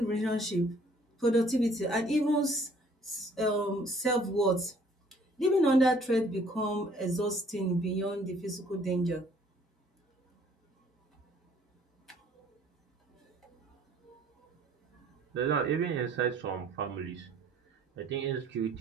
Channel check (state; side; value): normal; both; correlation 0.59